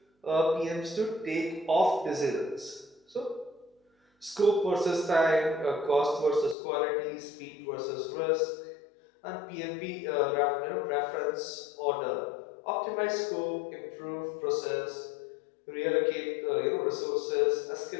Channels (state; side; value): drops out; right; at 6.6 s